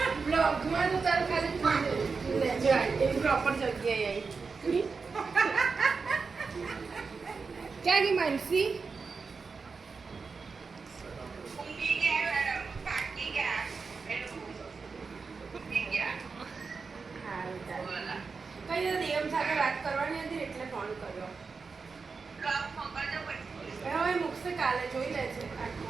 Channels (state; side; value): quieter; left; 4.8 dB